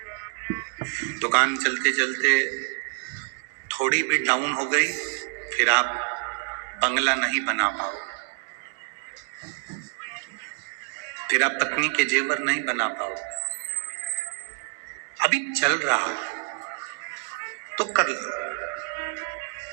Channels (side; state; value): left; silent; digital silence